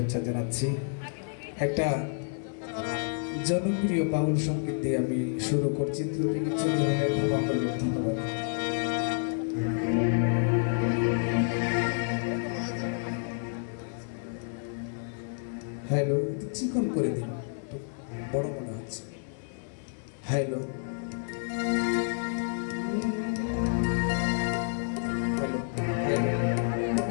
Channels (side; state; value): right; silent; digital silence